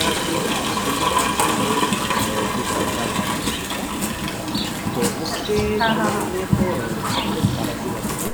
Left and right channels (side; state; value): both; identical; correlation 1.00